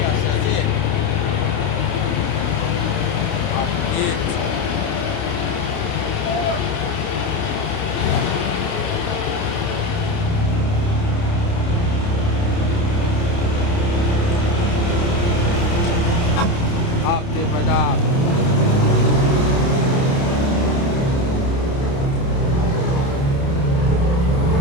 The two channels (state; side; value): late; right; 29 ms